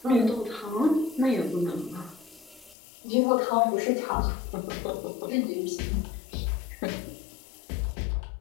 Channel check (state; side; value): drops out; right; at 2.8 s